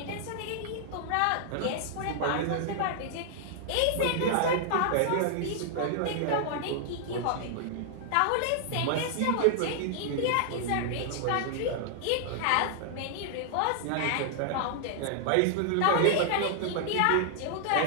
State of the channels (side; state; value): both; different; correlation -0.01